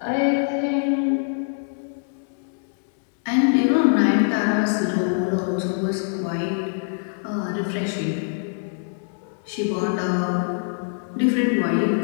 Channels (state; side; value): silent; right; digital silence